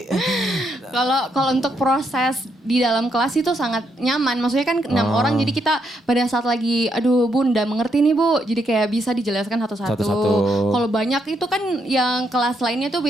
Kalau untuk proses di dalam kelas itu sangat nyaman. Maksudnya kan 6 orang jadi kita pada saat lagi aduh Bunda mengerti nih Bu. Jadi kayak bisa dijelaskan satu-satu. Satu-satu. Kalau banyak itu kan yang kelas lainnya tuh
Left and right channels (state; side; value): normal; both; correlation 0.77